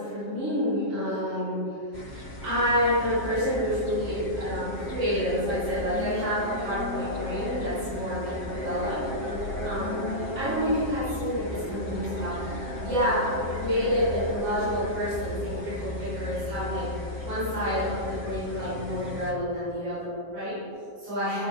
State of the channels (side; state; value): left; late; 7.5 ms